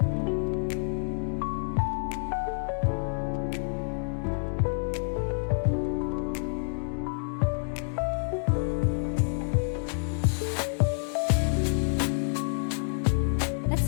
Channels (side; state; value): right; silent; digital silence